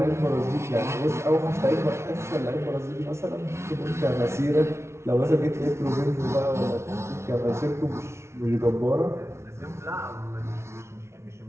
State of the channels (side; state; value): left; late; 0.13 ms